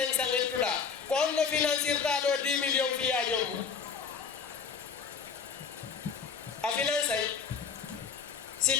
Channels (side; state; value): right; quieter; 6.0 dB